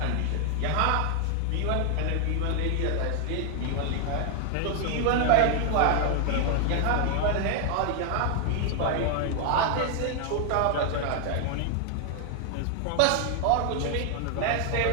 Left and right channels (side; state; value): both; different; correlation 0.00